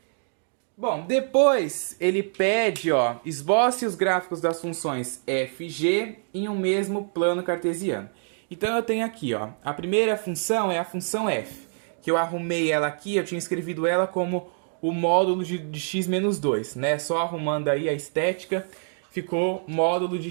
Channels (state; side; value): silent; left; digital silence